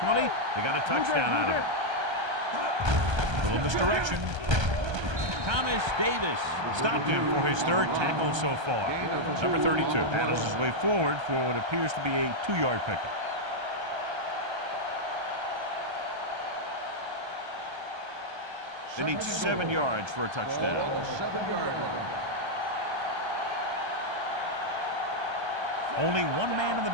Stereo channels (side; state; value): left; late; 1.3 ms